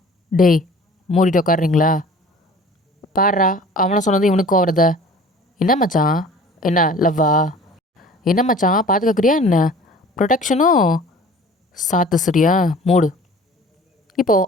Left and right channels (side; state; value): both; normal; correlation 0.46